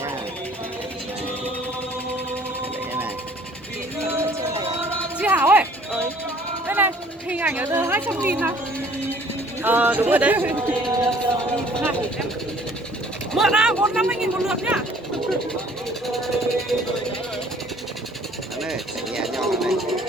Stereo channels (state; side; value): normal; both; correlation 0.55